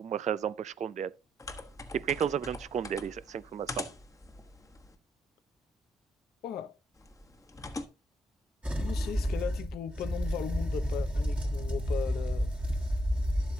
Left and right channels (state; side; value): normal; both; correlation 0.78